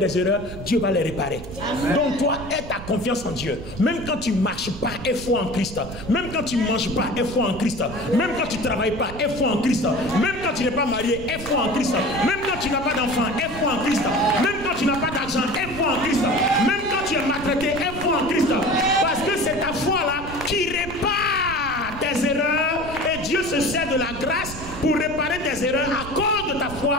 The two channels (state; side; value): noise; right; rumble, 12 dB below the sound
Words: erreurs, Dieu va les réparer. Amen. Donc toi, aie ta confiance en Dieu. Même quand tu ne marches pas, aie foi en Christ. Même quand tu ne manges pas, aie foi en Christ. Même quand tu ne travailles pas, aie foi en Christ. Même quand tu n'es pas marié, aie foi en Christ. Même quand tu n'as pas d'enfant, aie foi en Christ. Même quand tu n'as pas d'argent, aie foi en Christ. Même quand tu es maltraité, aie foi en Christ. Parce que c'est ta foi là qui répare tes erreurs. Et Dieu se sert de la grâce pour réparer tes erreurs à cause de ta foi